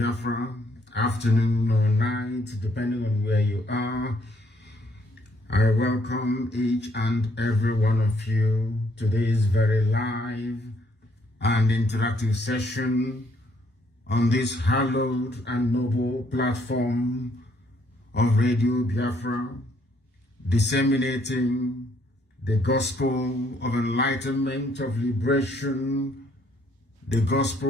afternoon or night, depending on where you are. I welcome each and every one of you to this very live and interactive session on this hallowed and noble platform of Radio Biafra, disseminating the gospel of enlightenment, of liberation, the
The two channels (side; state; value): both; normal; correlation 0.67